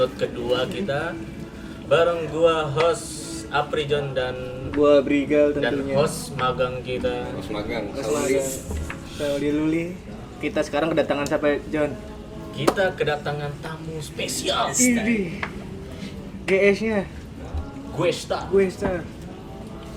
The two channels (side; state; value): both; identical; correlation 1.00